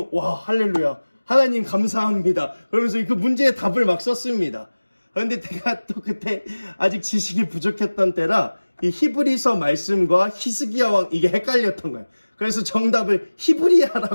할렐루야. 하나님 감사합니다. 그러면서 그 문제의 답을 막 썼습니다. 그런데 제가 또 그때 아직 지식이 부족했던 때라 이 히브리서 말씀과 히스기야 왕 이게 헷갈렸던 거예요. 그래서 정답을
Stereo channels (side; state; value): both; inverted; correlation -1.00